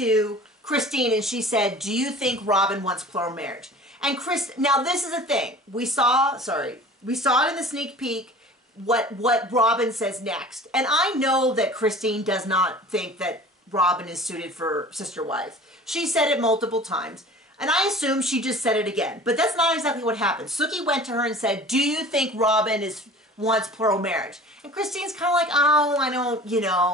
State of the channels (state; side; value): normal; both; correlation 0.43